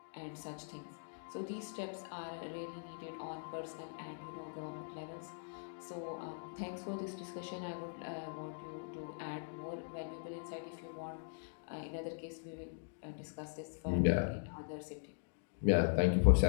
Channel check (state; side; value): silent; right; digital silence